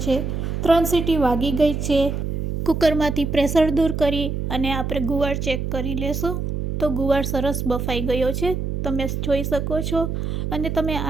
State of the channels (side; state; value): right; noise; hum, 2 dB below the sound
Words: છે. 3 સીટી વાગી ગઈ છે. કુકરમાંથી પ્રેશર દૂર કરી અને આપણે ગુવાર ચેક કરી લેશું. તો ગુવાર સરસ બફાઈ ગયો છે, તમે જોઈ શકો છો, અને તમે